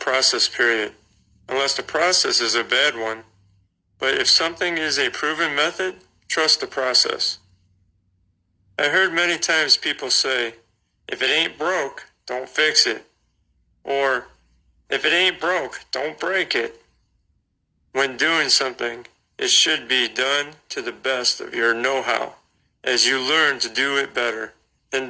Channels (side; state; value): both; identical; correlation 1.00